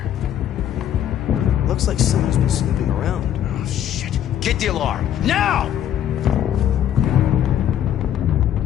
Looks like someone's been snooping around. Oh, shit. Get the alarm. Now!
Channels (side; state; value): right; quieter; 10.5 dB